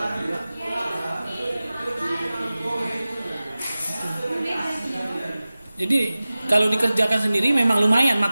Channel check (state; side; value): inverted; both; correlation -0.97